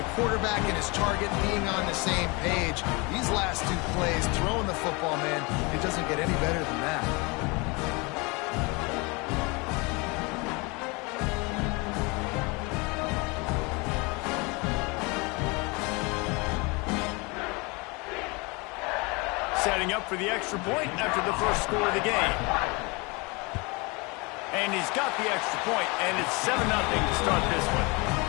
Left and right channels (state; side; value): quieter; right; 27.7 dB